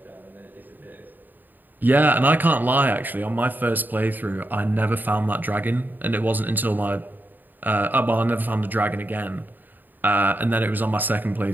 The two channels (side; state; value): left; late; 0.089 ms